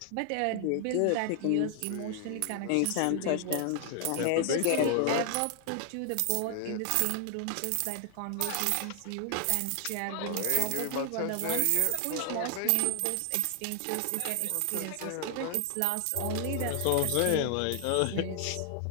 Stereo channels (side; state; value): both; different; correlation 0.00